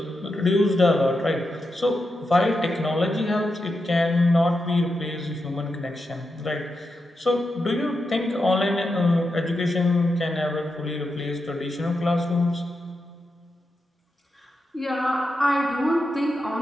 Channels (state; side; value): normal; both; correlation 0.87